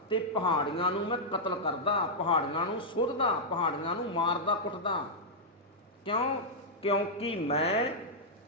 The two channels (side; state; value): both; normal; correlation -0.06